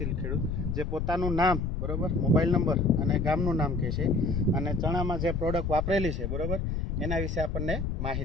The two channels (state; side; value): noise; left; rumble, 1 dB below the sound